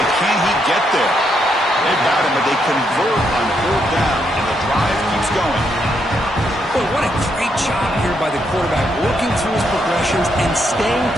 can he get there? They've got him, but they convert on fourth down, and the drive keeps going. Boy, what a great job here by the quarterback, working through his progressions and staying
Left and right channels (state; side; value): normal; both; correlation 0.77